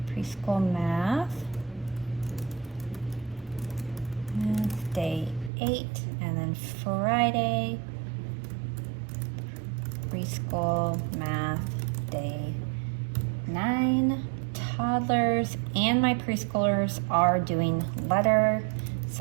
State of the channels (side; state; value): left; drops out; at 5.5 s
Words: preschool math day 8. And then Friday preschool math day 9. Toddlers and my preschoolers are doing letter.